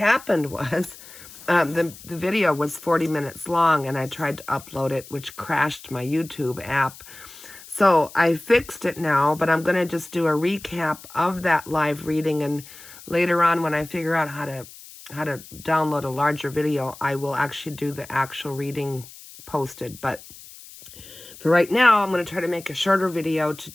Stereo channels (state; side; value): noise; left; hiss, 18 dB below the sound